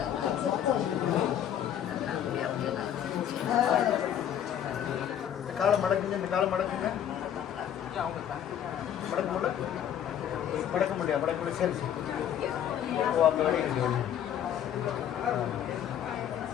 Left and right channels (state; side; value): quieter; right; 9.9 dB